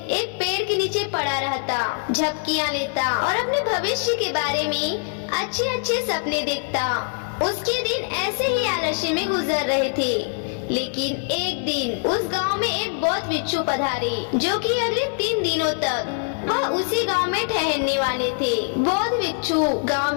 एक पेड़ के नीचे पड़ा रहता, झपकियां लेता और अपने भविष्य के बारे में अच्छे अच्छे सपने देखता। उसके दिन ऐसे ही आलस्य में गुजर रहे थे। लेकिन एक दिन उस गांव में एक बौद्ध भिक्षु पधारे, जो कि अगले 3 दिनों तक वह उसी गांव में ठहरने वाले थे। बौद्ध भिक्षु गांव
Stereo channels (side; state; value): right; silent; 60 dB below the other